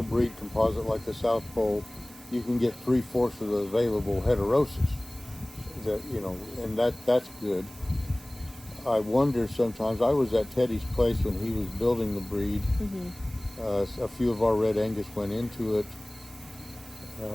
composite like the South Pole, you can get 3/4 of the available heterosis. And that's good. I wonder sometimes. I was at Teddy's place when he was building the breed. Mm-hmm. A few of our Red Angus went into it.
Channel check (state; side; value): noise; right; hiss, 21 dB below the sound